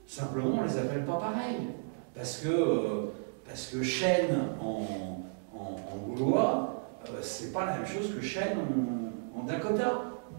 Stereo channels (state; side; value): silent; left; digital silence